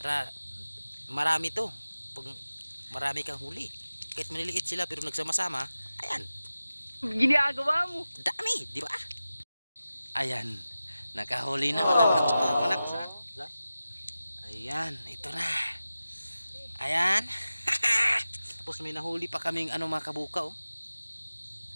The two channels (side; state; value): both; inverted; correlation -0.94